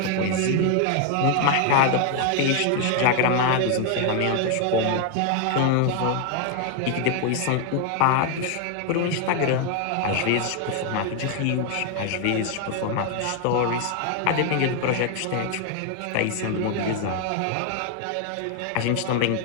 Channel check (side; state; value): both; different; correlation 0.00